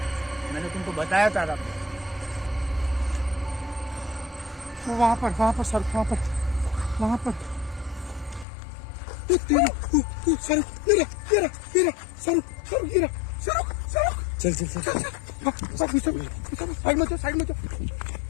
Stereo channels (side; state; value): right; drops out; at 8.5 s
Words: मैंने तुमको बताया था रब। वो वहाँ पर सर, वहाँ पर सर साइड में